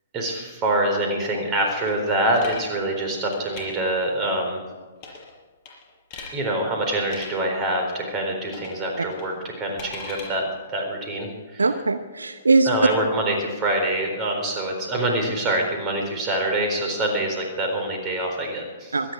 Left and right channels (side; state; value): both; inverted; correlation -0.40